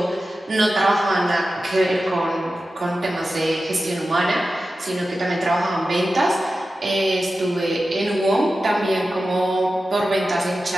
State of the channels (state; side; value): normal; both; correlation 0.93